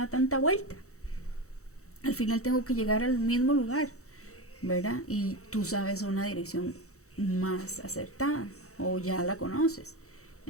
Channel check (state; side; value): late; right; 0.65 ms